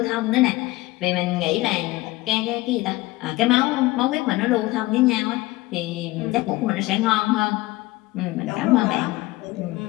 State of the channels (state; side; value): quieter; right; 19.8 dB